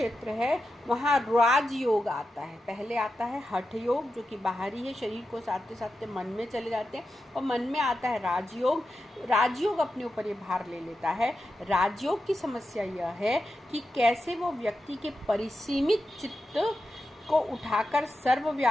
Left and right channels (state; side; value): normal; both; correlation 0.90